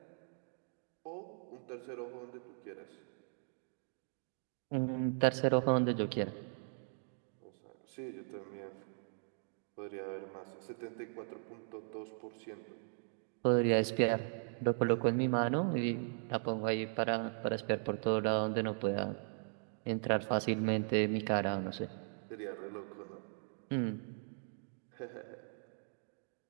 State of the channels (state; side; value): silent; left; digital silence